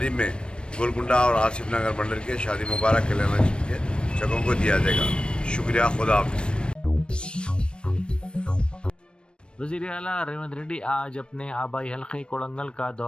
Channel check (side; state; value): right; late; 0.056 ms